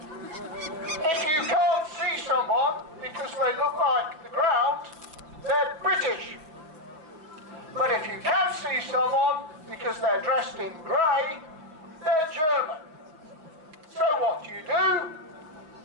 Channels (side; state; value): left; late; 6.3 ms